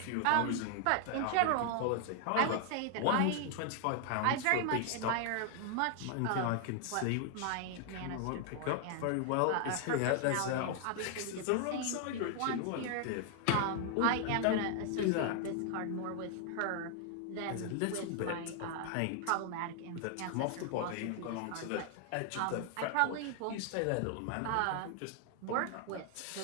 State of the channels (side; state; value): both; different; correlation 0.00